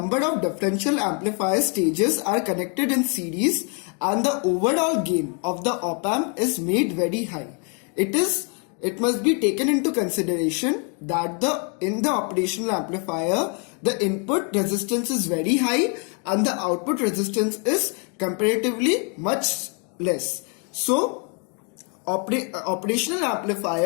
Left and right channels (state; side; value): quieter; right; 37.8 dB